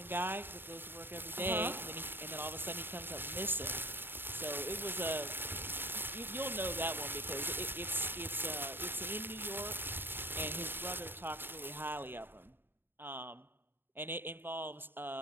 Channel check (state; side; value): late; left; 0.099 ms